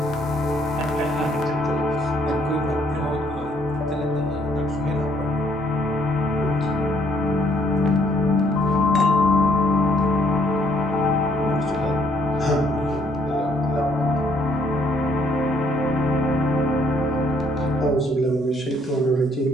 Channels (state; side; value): normal; both; correlation 0.67